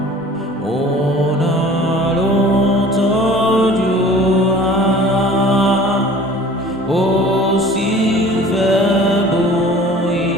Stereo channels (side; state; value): both; normal; correlation 0.46